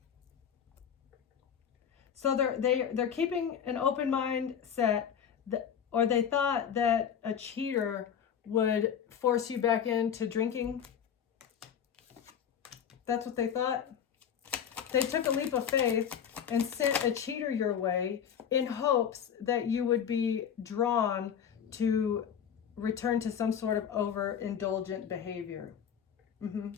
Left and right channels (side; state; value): right; quieter; 8.2 dB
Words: So they're keeping an open mindset, or they thought that a cheater would force you back into drinking. That's what they thought. They took a leap of faith and sent a cheater your way in hopes that you would be drawn to return to some sort of overindulgent behavior.